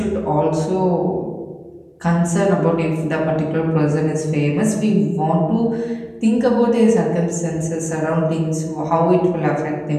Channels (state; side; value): identical; both; correlation 1.00